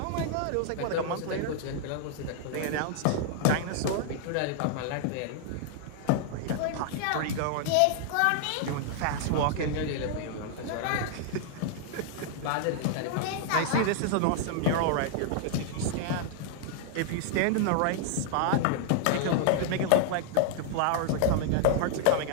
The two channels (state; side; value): different; both; correlation -0.01